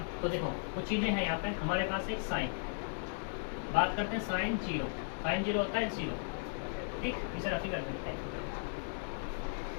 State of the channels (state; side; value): silent; right; digital silence